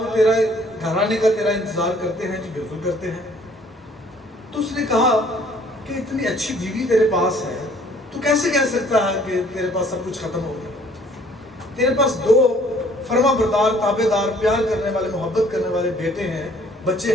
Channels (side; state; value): both; normal; correlation 0.58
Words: تیرا گھر آنے کا تیرا انتظار کرتے ہیں؟ جی بالکل کرتے ہیں۔ تو اس نے کہا کہ اتنی اچھی بیوی تیرے پاس ہے تو کیسے کہہ سکتا ہے کہ تیرے پاس سب کچھ ختم ہو گیا؟ تیرے پاس 2 فرما بردار، تابع دار، پیار کرنے والے، محبت کرنے والے بیٹے ہیں،